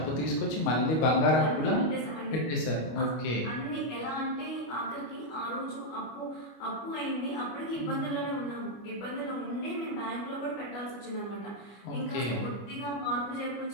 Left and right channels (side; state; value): right; late; 25 ms